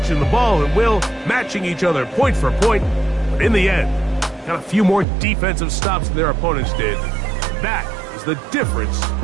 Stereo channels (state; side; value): drops out; left; at 5.1 s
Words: the ball at will, matching each other point for point. But in the end, got a few more defensive stops than their opponents did. That is the difference